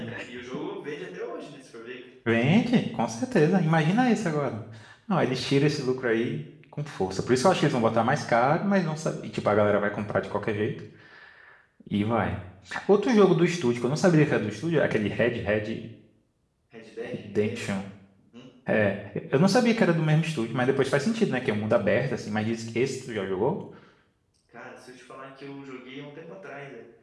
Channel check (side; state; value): both; identical; correlation 1.00